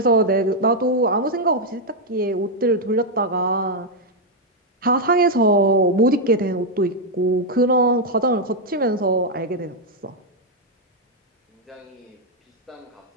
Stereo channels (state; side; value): normal; both; correlation 0.00